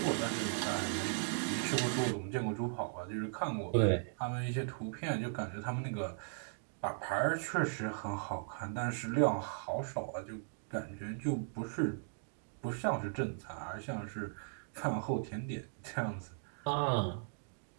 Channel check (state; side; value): silent; left; digital silence